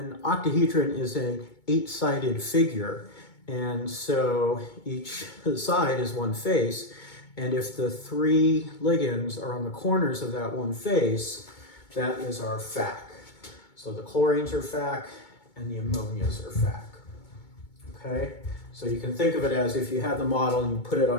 octahedron is an 8-sided figure, and so each side is one face, and if the 3 ligands are on the corners of that one face, that is our FAC. So the chlorines are FAC, and the ammonias are FAC. Okay, so you can think of it as if you had the model and you put it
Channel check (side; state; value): right; late; 2.2 ms